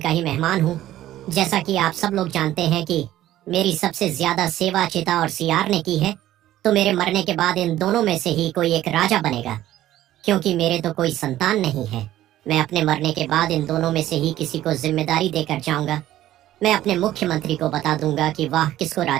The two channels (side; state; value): left; quieter; 13.8 dB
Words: ही मेहमान हूँ। जैसा कि आप सब लोग जानते हैं कि मेरी सबसे ज्यादा सेवा चिता और सियार ने की है, तो मेरे मरने के बाद इन दोनों में से ही कोई एक राजा बनेगा। क्योंकि मेरे तो कोई संतान नहीं है, मैं अपने मरने के बाद इन दोनों में से ही किसी को जिम्मेदारी देकर जाऊंगा। मैं अपने मुख्यमंत्री को बता दूंगा कि वह किसको